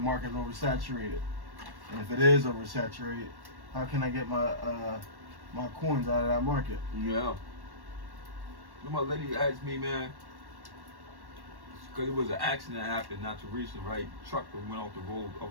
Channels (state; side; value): late; left; 1.1 ms